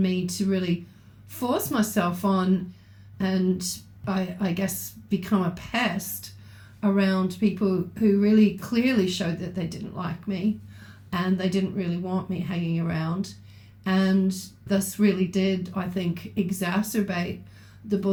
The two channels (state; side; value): identical; both; correlation 1.00